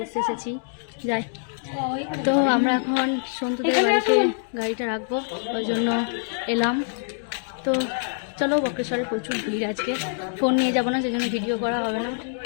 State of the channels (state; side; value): silent; right; digital silence